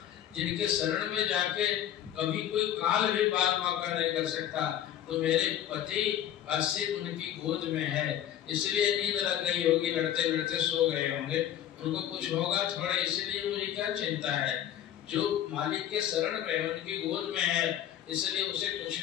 जिनके शरण में जाके कभी कोई काल भी बाल मौका नहीं कर सकता, तो मेरे पति का सिर उनकी गोद में है, इसलिए नींद लग गई होगी, लड़ते लड़ते सो गए होंगे, उनको कुछ होगा थोड़ा, इसलिए मुझे क्या चिंता है, जो मालिक के शरण में है उनकी गोद में है, इसलिए उसे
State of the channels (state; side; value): quieter; right; 11.0 dB